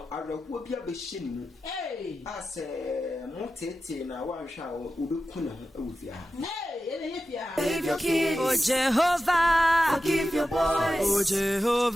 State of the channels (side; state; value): both; normal; correlation 0.92